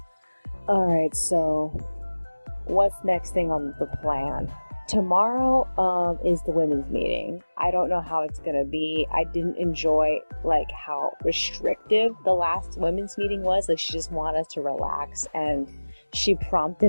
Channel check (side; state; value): both; inverted; correlation -1.00